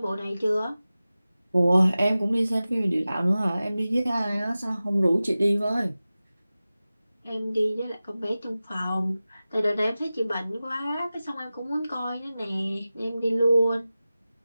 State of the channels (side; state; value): both; inverted; correlation -0.96